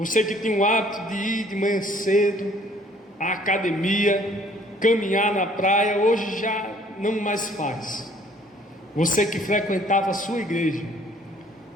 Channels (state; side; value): normal; both; correlation 0.58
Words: que tinha o hábito de ir de manhã cedo à academia, caminhar na praia, hoje já não mais faz. Você que frequentava a sua igreja,